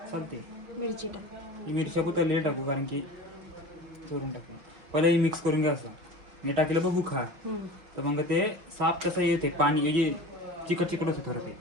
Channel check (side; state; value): left; late; 6.2 ms